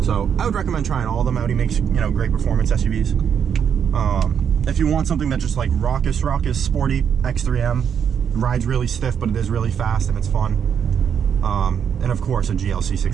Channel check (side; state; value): left; quieter; 7.9 dB